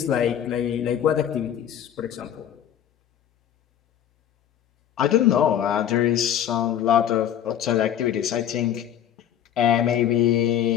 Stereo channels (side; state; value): right; quieter; 10.1 dB